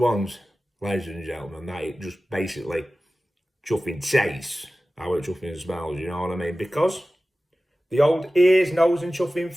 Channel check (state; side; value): normal; both; correlation 0.96